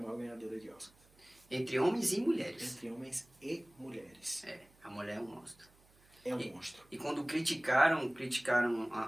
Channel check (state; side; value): noise; right; hum, 30 dB below the sound